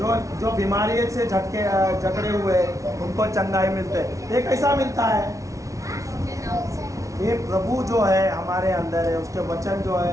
जो बीमारी से जकड़े हुए उनको चंगाई मिलते हैं। ये कैसा मिलता है? ये प्रभु जो है हमारे अंदर है, उसके वचन जो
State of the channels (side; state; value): left; late; 0.16 ms